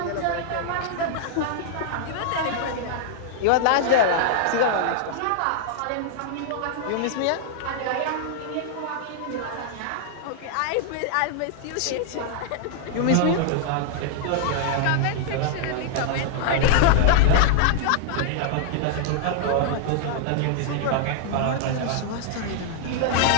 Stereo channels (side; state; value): both; different; correlation -0.01